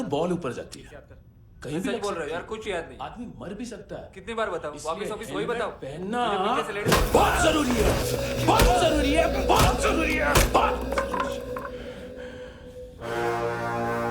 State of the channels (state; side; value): identical; both; correlation 1.00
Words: बॉल ऊपर जाती है। कहीं भी बोल रहे हो यार, कुछ याद नहीं। आदमी मर भी सकता है। कितनी बार बताऊं? वापिस वापिस वही बताओ। पहनना पीछे से लेट जाओ। बहुत जरूरी है, बहुत जरूरी है, बहुत जरूरी है, बहुत।